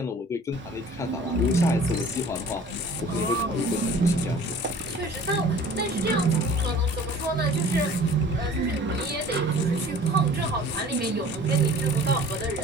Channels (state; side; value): normal; both; correlation 0.47